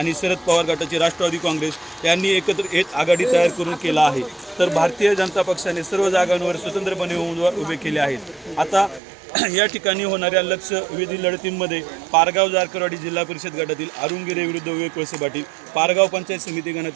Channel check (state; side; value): drops out; left; at 9.0 s